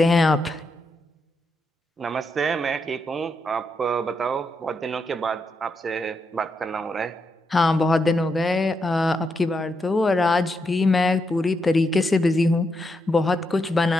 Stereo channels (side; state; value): both; normal; correlation 0.82